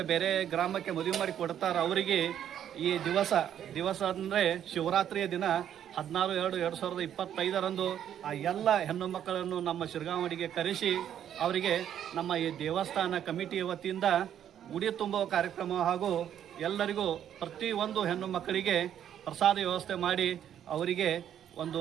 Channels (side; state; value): left; quieter; 10.0 dB